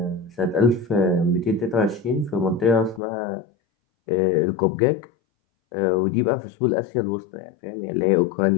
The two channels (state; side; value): drops out; right; at 3.0 s